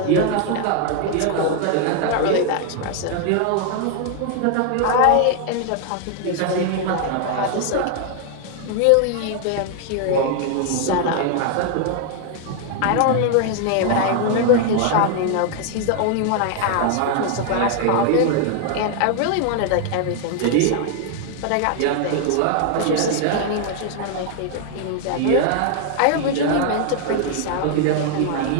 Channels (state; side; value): different; both; correlation 0.00